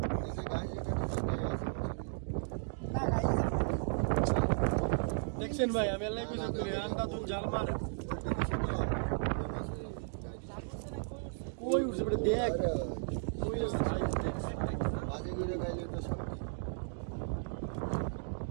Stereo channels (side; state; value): left; silent; digital silence